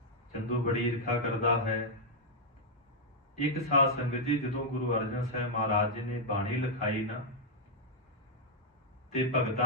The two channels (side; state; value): both; normal; correlation -0.03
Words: चंदू बड़ी ईर्खा करता है। एक साध संगत जी जदों गुरु अर्जन साहब महाराज जी ने बाणी लिखाई ना ते